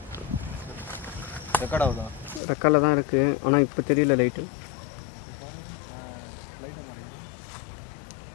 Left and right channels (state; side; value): drops out; right; at 2.4 s